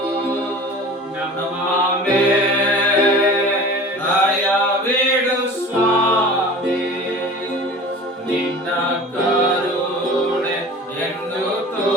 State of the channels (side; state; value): both; normal; correlation 0.39